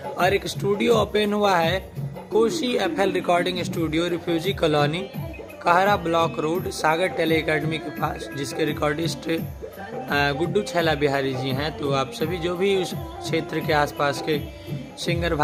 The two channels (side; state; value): both; identical; correlation 1.00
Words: और एक स्टूडियो ओपन हुआ है Koshi FL recording studio, refugee colony, Kahra block road, Sagar tele academy के पास, जिसके रिकॉर्डिस्ट गुड्डू छैला बिहारी जी हैं। तो आप सभी जो भी उस क्षेत्र के आसपास के सिंगर